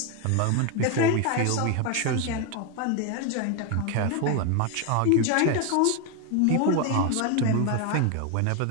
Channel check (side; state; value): both; different; correlation 0.01